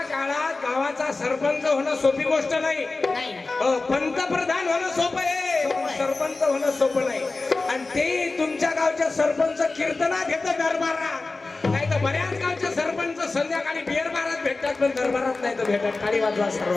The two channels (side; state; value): right; quieter; 3.5 dB